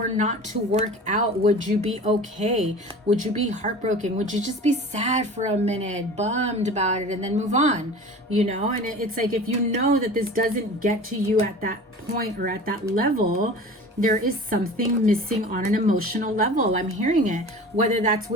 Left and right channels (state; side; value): normal; both; correlation 0.38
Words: not to work out, would you be okay? Would you be heartbroken? Would you just be sad for a minute, bummed about it, and then move on? And it's like, if you know that this doesn't get to you at that point or at that level, there is something missing on an emotional level. I'm hearing it, whether that's